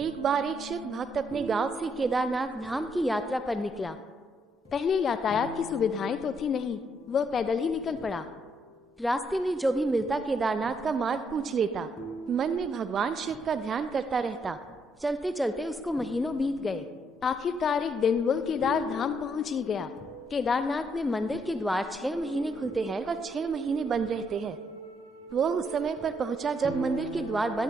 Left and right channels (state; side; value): normal; both; correlation 0.73